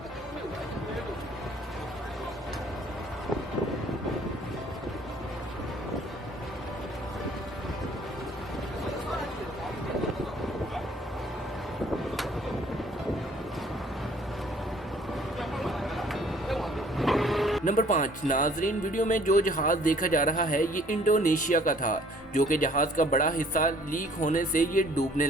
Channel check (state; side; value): normal; both; correlation 0.57